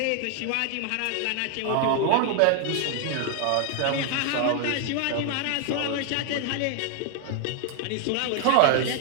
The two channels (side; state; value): both; different; correlation 0.00